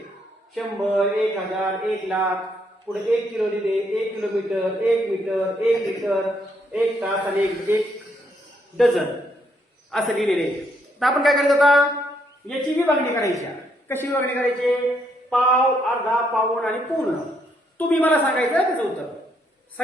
100, 1000, 1,00,000, पुढे 1 किलो लिहिले, 1 किलोमीटर, 1 मीटर, 1 लिटर, 1 तास आणि 1 डझन असं लिहिलेले. तर आपण काय करायचं आता? याची विभागणी करायची. कशी विभागणी करायची? पाव, अर्धा, पाऊण आणि पूर्ण. तुम्ही मला सांगायचं त्याचं उत्तर.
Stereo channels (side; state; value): both; normal; correlation 0.73